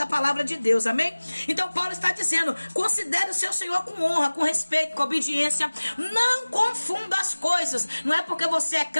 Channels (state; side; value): inverted; both; correlation -1.00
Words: palavra de Deus, amém? Então Paulo está dizendo, considere o seu Senhor com honra, com respeito, com obediência, não confunda as coisas. Não é porque você é